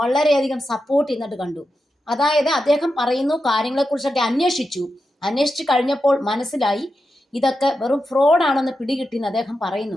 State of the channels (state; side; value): normal; both; correlation 0.89